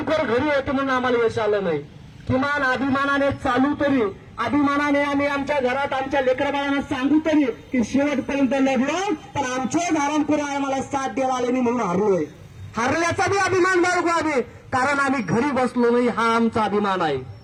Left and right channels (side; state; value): both; identical; correlation 1.00